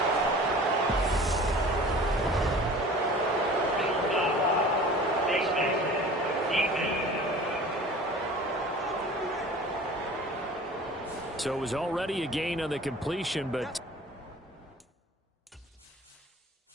So it was already a gain on the completion, but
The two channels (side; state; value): both; normal; correlation 0.43